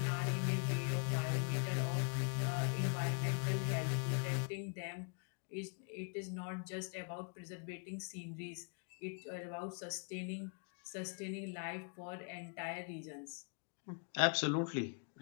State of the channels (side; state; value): right; quieter; 39.7 dB